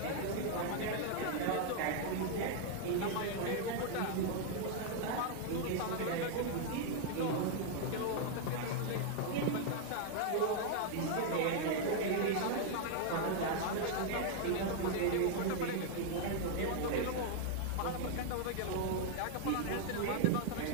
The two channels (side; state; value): both; different; correlation 0.00